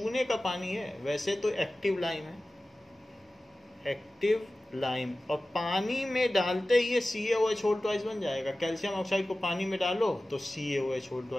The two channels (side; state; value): both; normal; correlation 0.96